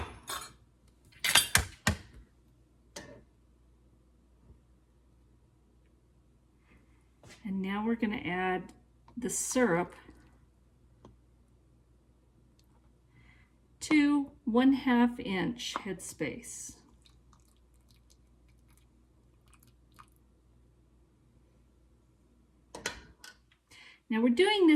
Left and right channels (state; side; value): identical; both; correlation 1.00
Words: And now we're going to add the syrup to 1/2 inch headspace. Now we're doing